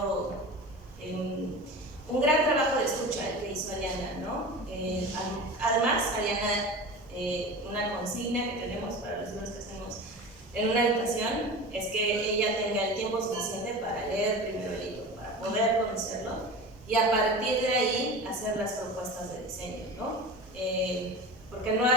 un gran trabajo de escucha el que hizo Ariana, ¿no? Además, Ariana, una consigna que tenemos para los libros que hacemos en una habitación es que ella tenga el tiempo suficiente para leer primero el libro, para poder conocerlo y a partir de ahí hacer las propuestas de diseño, ¿no? Porque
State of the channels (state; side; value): normal; both; correlation 0.32